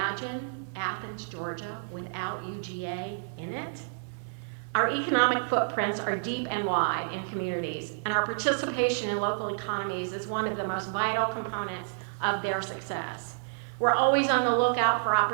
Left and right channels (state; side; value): silent; left; 58 dB below the other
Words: Athens, Georgia, without UGA in it? Our economic footprints are deep and wide in communities, and our participation in local economies is one of the most vital components of their success. We're always on the lookout for